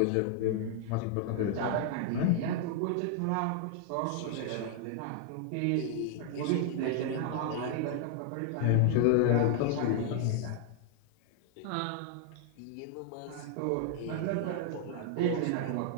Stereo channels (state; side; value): different; both; correlation 0.00